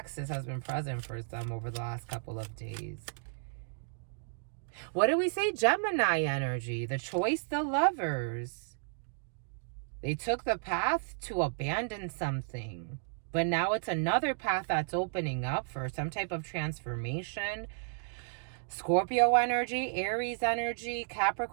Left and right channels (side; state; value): left; silent; digital silence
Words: has been present for some over the last couple of days. What do we say? Gemini energy. The choice, the lovers. They took the path to abandon something. But now it's another path that's opening up for some type of transformation. Scorpio energy, Aries energy,